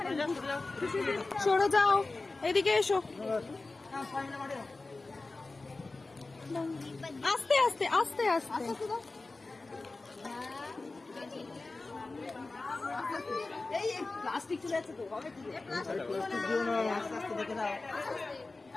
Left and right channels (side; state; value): right; quieter; 3.4 dB